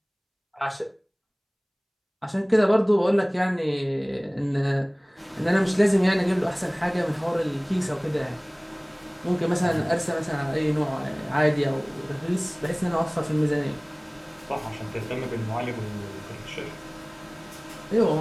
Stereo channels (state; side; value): identical; both; correlation 1.00